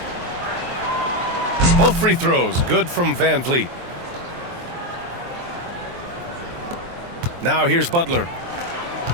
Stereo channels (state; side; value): late; left; 23 ms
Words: Both free throws good from Van Vliet. Now here's Butler.